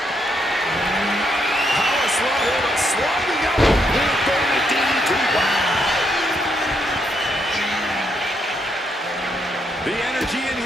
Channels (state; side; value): normal; both; correlation 0.77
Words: Power slide here, but sliding out. With the DDT. The energy in